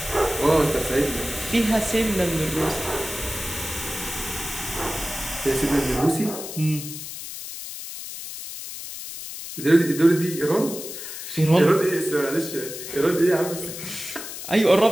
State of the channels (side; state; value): left; noise; hiss, 9 dB below the sound